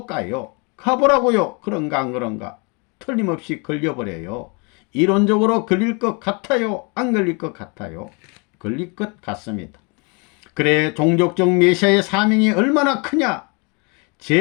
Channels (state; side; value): quieter; right; 32.2 dB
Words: 가요. 가보라고요. 그런가 안 그런가? 틀림없이 걸려버려요. 이론적으로 걸릴 것 같아요? 안 걸릴 것 같아요? 걸릴 것 같습니다. 그래, 종족적 메시아의 사명이 얼마나 크냐?